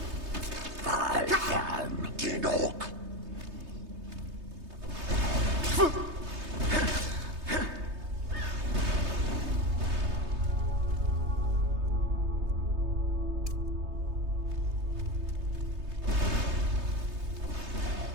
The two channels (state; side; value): late; left; 3.3 ms